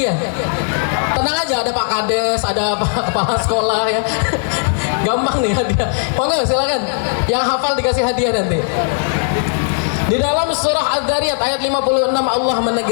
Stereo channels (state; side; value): silent; right; digital silence